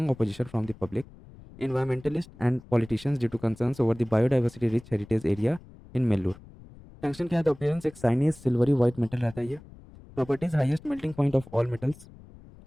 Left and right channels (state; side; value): noise; left; rumble, 21 dB below the sound